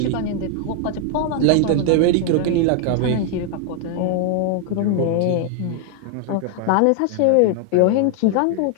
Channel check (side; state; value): both; different; correlation 0.00